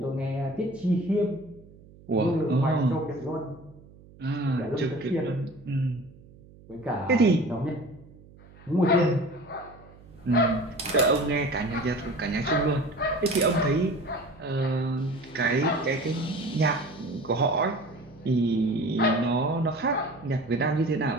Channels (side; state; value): right; noise; hum, 23 dB below the sound